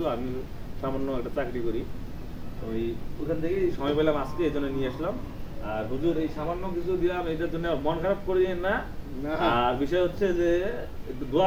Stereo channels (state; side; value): identical; both; correlation 1.00